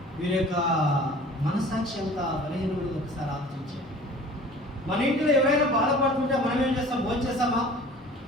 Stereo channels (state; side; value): normal; both; correlation 0.46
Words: వీరి యొక్క మనసాక్షి ఎంత బలహీనమైనది ఒకసారి ఆలోచించారు. మన ఇంట్లో ఎవరైనా బాధపడుతుంటే మనం ఏం చేస్తాం? భోజనం చేస్తామా?